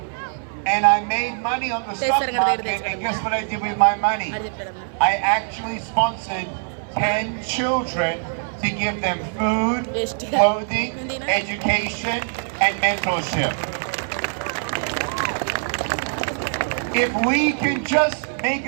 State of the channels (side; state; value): left; silent; digital silence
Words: And I made money on the stock market, and guess what I did with my money? I actually sponsored 10 children to give them food, clothing, education, and mentorship. If we can just make